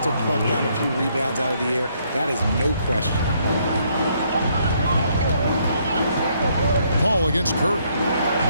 or pluck down a few rebounds out of the air. That is no question. Paul against Curry.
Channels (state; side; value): inverted; both; correlation -0.70